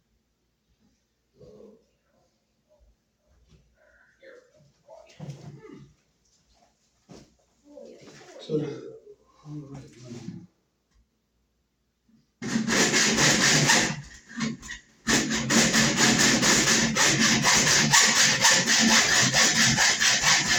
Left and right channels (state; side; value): identical; both; correlation 1.00